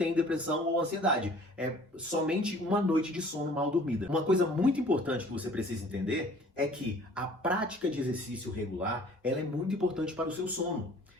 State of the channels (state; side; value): normal; both; correlation 0.52